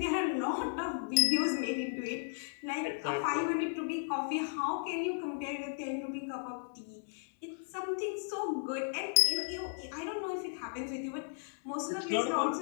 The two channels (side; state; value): right; silent; 54 dB below the other